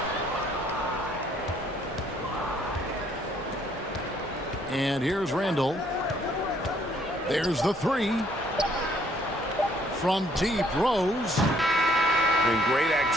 And here's Randall. There's the 3. From deep, Rose. And great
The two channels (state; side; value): normal; both; correlation 0.65